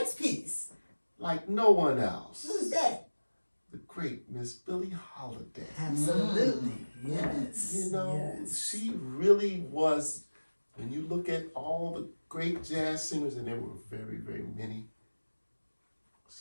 piece. Like no one else. Who's that? The great Miss Billie Holiday. Absolutely. Yes. You know, yes. she really was, when you look at all the great jazz singers, and there were very, very many,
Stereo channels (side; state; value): both; inverted; correlation -1.00